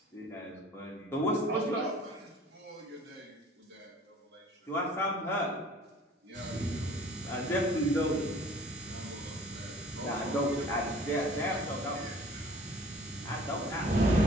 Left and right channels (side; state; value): both; normal; correlation 0.50